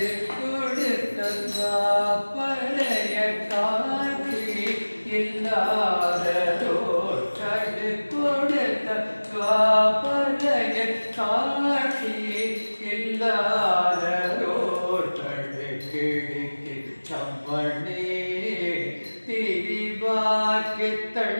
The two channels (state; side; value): inverted; both; correlation -1.00